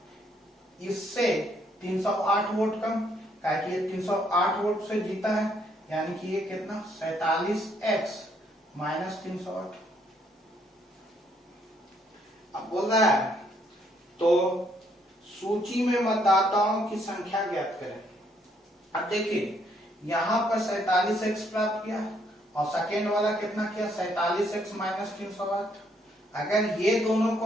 इससे 308 वोट कम, कि ये 308 वोट से जीता है, यानी कि ये कितना? 47x minus 308। अब बोल रहा है तो सूची में मतदाताओं की संख्या ज्ञात करें। अब देखिए यहां पर 47x प्राप्त किया और सेकेंड वाला कितना किया? 47x minus 308। अगर ये दोनों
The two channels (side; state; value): both; normal; correlation 0.70